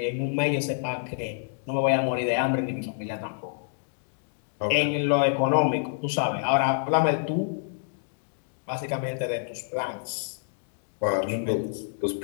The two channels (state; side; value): silent; right; digital silence